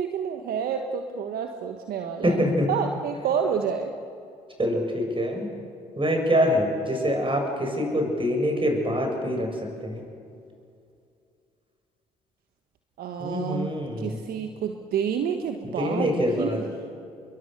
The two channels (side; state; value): both; normal; correlation 0.57